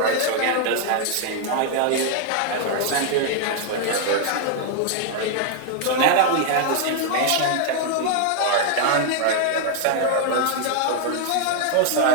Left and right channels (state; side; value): different; both; correlation 0.00